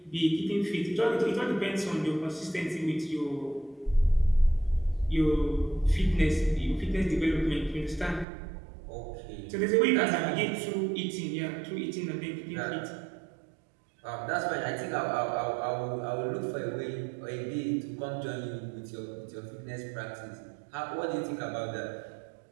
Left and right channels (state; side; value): drops out; left; at 8.2 s